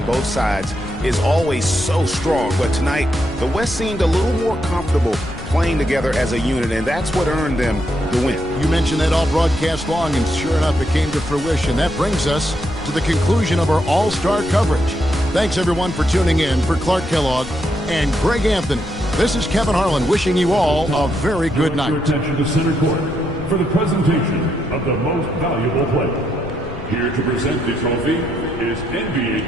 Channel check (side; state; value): left; noise; rumble, 12 dB below the sound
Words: both sides is always so strong. But tonight, the West seemed a little more comfortable playing together as a unit, and that's what earned them the win. You mentioned that all broadcast long, and sure enough, it came to fruition. That brings us to the conclusion of our All-Star coverage. Thanks, everyone, for tuning in. For Clark Kellogg and Greg Anthony, this is Kevin Harlan wishing you all a very good night. Attention to center court for the presentation of the most valuable player. Here to present the trophy is NBA